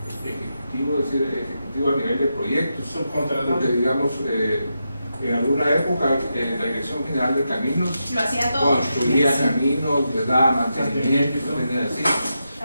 ejecutivo, es decir, ejecutivo a nivel de proyectos. Porque digamos, en alguna época la Dirección General de Caminos Lo hacía todo. construía caminos, les daba mantenimiento, tenía así.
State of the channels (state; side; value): inverted; both; correlation -0.87